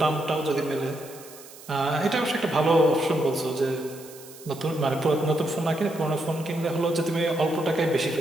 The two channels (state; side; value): noise; right; hiss, 19 dB below the sound